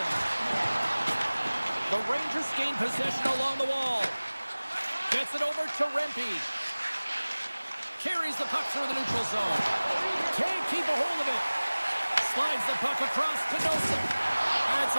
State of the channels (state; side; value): inverted; both; correlation -1.00